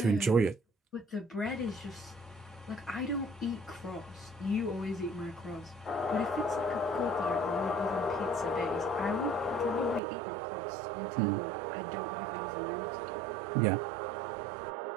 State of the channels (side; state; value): left; drops out; at 10.0 s